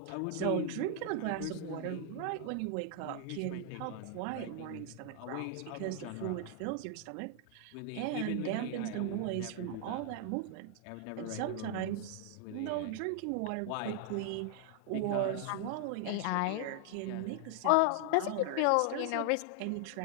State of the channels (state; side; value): different; both; correlation 0.00